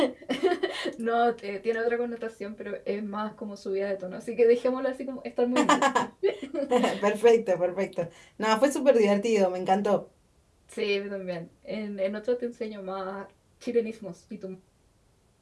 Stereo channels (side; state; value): both; identical; correlation 1.00